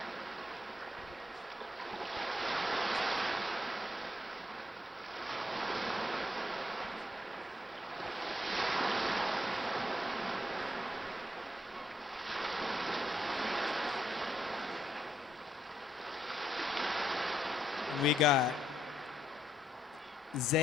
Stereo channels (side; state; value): both; normal; correlation 0.76